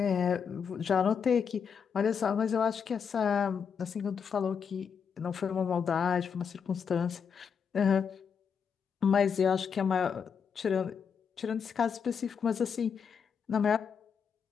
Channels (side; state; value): right; quieter; 6.7 dB